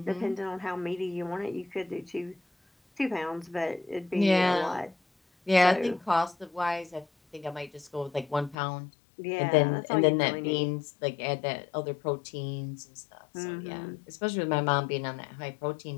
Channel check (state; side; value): drops out; right; at 8.6 s